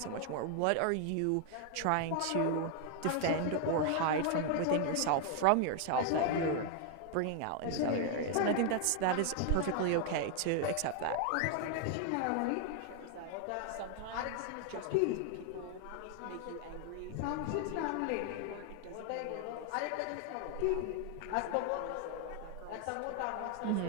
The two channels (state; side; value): different; both; correlation 0.00